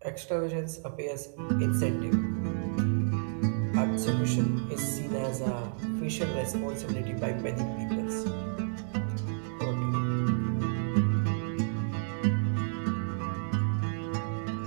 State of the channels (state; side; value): silent; left; digital silence